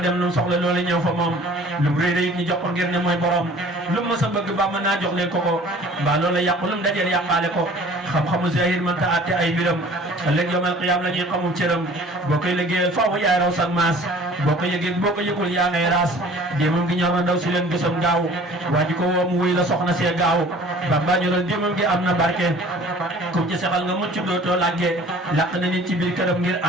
lu mu soxla loolu ñëw fa moom lu mu réy ñu jox ko ngir ne mooy borom lu mu mës a bëgg ba mën naa jox leen ko mbaa loola yàqu lu mu dajeel yàqaale ko xam-xamu zahir mënta àtte ay mbiram ëllëg yawmal qiyaam la ñuy xamum cëram boo koy liggéeyal faaw yaay raw sag maas boo ko yëgee boo ko yëgul yaa ngay raas déemam gi ñor na ndaw si leen gësam gaaw waa ji ko woo mu wuy la soxna see gaaw Bamba ñoral déemam gi am na barke kum ci sexal nga mucc dootoo làggee làq na nit ci biir këram ngir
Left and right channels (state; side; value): normal; both; correlation 0.49